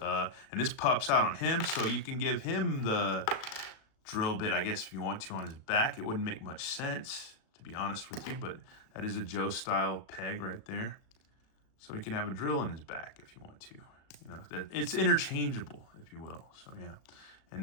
and this pops out on him, so you can give him the drill bit, I guess, if you want to, on his back. It wouldn't make much sense, to be honest with you, but that is a Joe-style peg right there. So he can have a drill in his back if you want to. You know, it's interchangeable, if you will. So yeah. And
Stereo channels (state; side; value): late; right; 37 ms